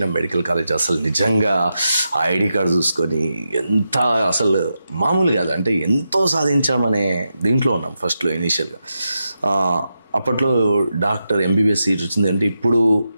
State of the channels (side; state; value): both; inverted; correlation -0.88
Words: మెడికల్ కాలేజ్. అసలు నిజంగా ఆ ఐడి కార్డు చూసుకొని ఎంత అసలు మామూలు కాదు, అంటే ఎంతో సాధించామనే దీంట్లో ఉన్నాం ఫస్ట్లో ఇనీషియల్గా. అప్పట్లో డాక్టర్ ఎంబీబీఎస్ సీట్ వచ్చింది అంటే ఇప్పుడు